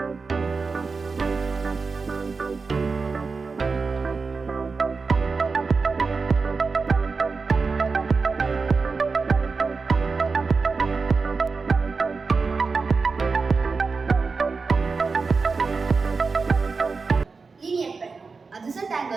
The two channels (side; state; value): left; quieter; 4.5 dB